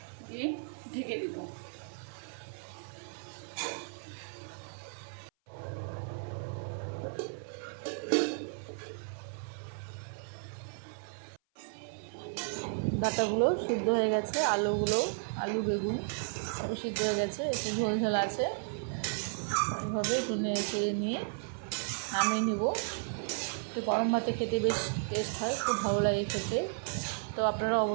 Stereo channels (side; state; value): left; silent; 55 dB below the other